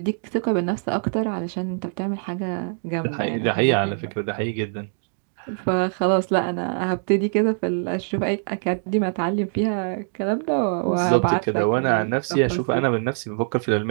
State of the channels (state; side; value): silent; left; 63 dB below the other